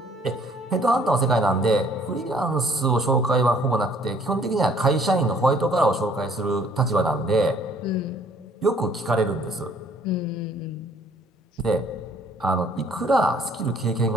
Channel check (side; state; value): both; normal; correlation 0.60